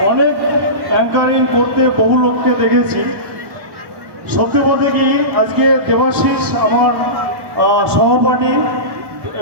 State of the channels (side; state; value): left; late; 1.1 ms